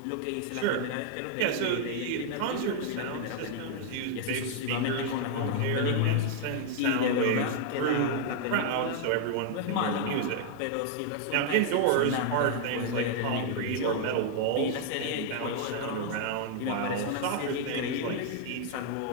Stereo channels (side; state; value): both; different; correlation 0.00